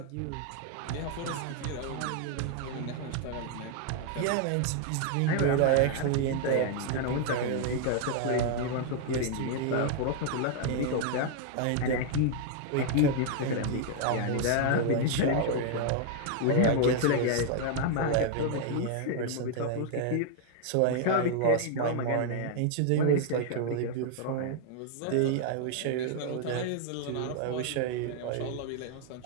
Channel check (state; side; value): different; both; correlation 0.00